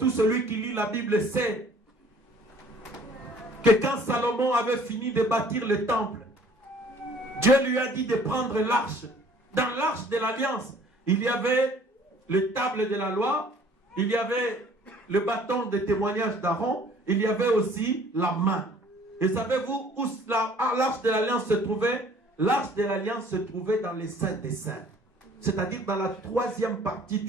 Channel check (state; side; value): normal; both; correlation 0.54